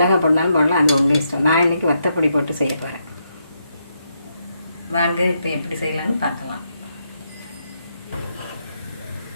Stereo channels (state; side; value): inverted; both; correlation -0.80